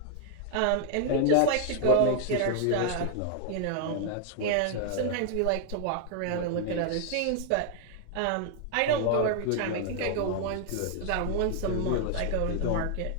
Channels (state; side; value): different; both; correlation 0.00